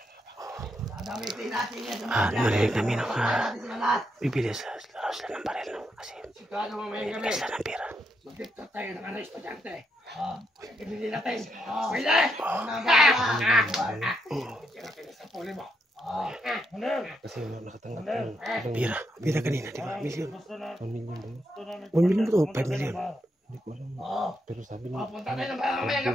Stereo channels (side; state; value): both; normal; correlation 0.79